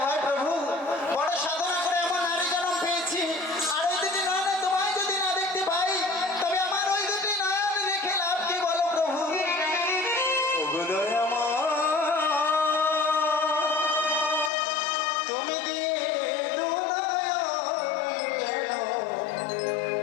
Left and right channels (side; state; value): right; drops out; at 14.5 s